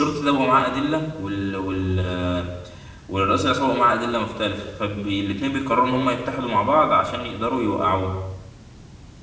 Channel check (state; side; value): identical; both; correlation 1.00